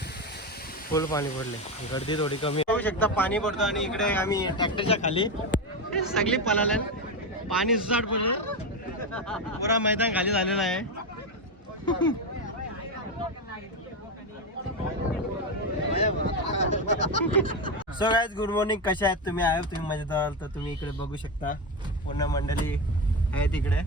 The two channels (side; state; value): both; normal; correlation 0.14